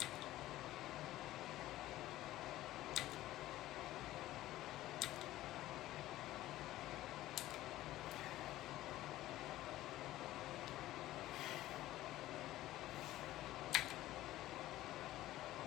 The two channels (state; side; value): quieter; right; 15.4 dB